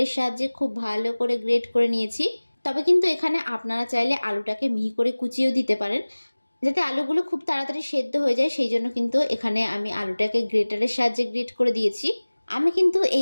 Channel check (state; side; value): inverted; both; correlation -1.00